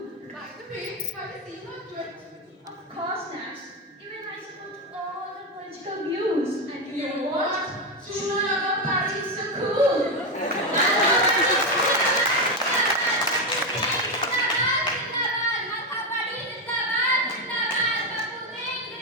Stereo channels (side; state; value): both; normal; correlation 0.10